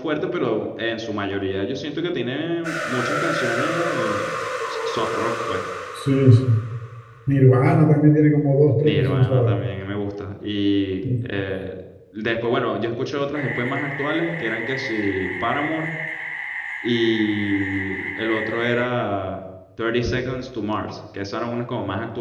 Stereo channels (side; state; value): both; identical; correlation 1.00